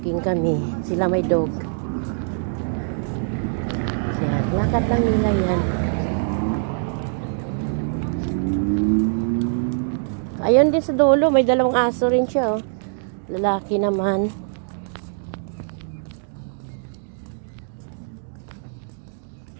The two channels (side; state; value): left; silent; 63 dB below the other